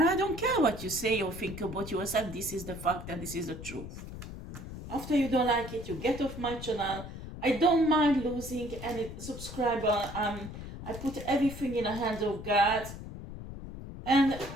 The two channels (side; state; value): left; noise; rumble, 10 dB below the sound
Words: I don't care what you say or think about yourself. This is the fact and this is the truth. After you don't like it, you get off my channel. I don't mind losing any subscriber. I put everything in the hands of God. And